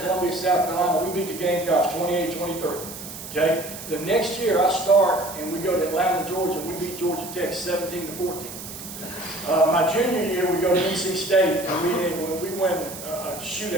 South Carolina. We beat the Gamecocks 28-23. Okay. The next year I start and we go to Atlanta, Georgia. We beat Georgia Tech 17-14. My junior year we go to NC State and we win a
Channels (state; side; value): noise; right; hiss, 11 dB below the sound